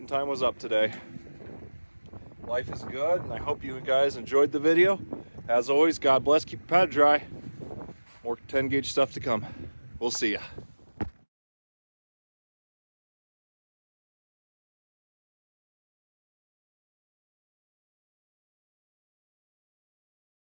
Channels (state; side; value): inverted; both; correlation -1.00